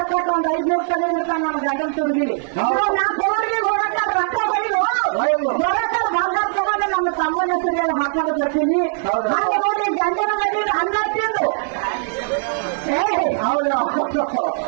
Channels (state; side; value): silent; left; digital silence